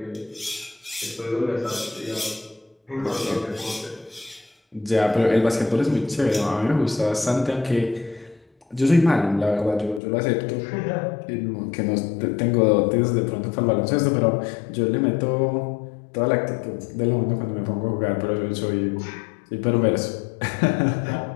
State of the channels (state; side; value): drops out; right; at 10.0 s